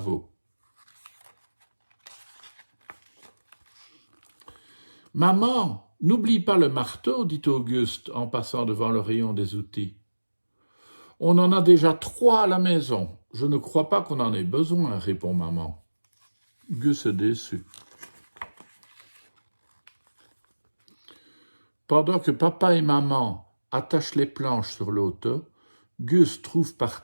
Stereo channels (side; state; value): both; inverted; correlation -1.00